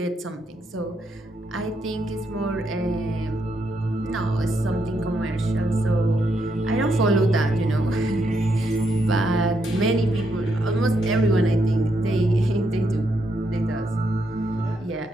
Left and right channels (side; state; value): both; normal; correlation 0.78